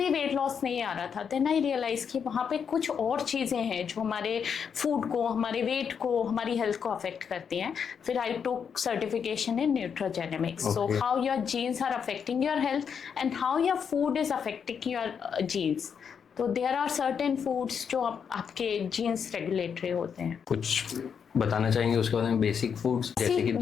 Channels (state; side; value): quieter; right; 7.0 dB